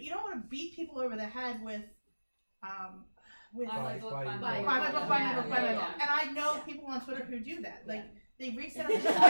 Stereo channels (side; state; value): both; inverted; correlation -1.00